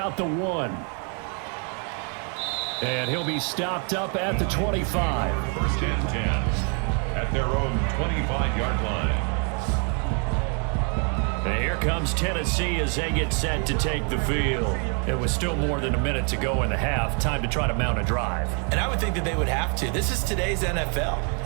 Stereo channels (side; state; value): left; quieter; 38.8 dB